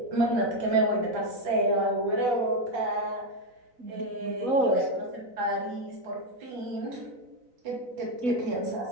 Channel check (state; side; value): late; left; 4.0 ms